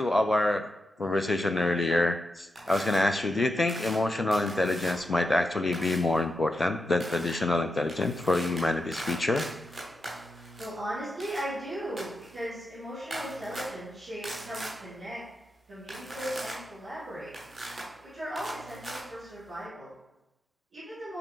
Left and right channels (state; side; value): normal; both; correlation 0.87